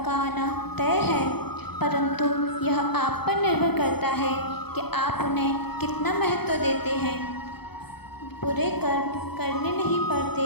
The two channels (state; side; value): late; right; 0.97 ms